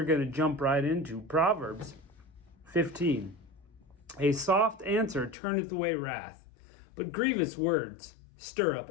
going to jump right into Proverbs 15. A soft answer turneth away wrath, but grievous words stir up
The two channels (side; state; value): right; drops out; at 5.4 s